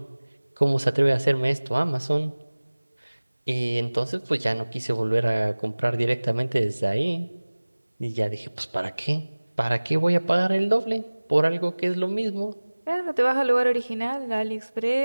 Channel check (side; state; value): both; inverted; correlation -1.00